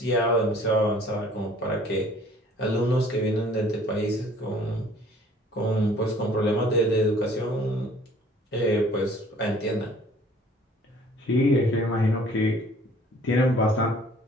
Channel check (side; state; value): both; normal; correlation 0.54